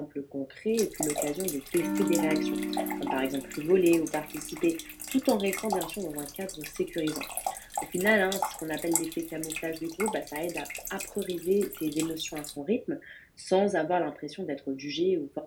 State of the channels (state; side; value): identical; both; correlation 1.00